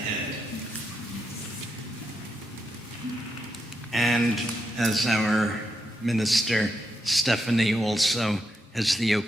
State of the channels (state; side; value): normal; both; correlation 0.83